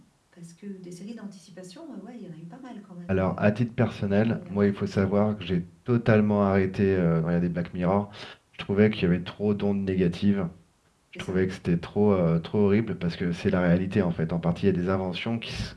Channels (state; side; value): identical; both; correlation 1.00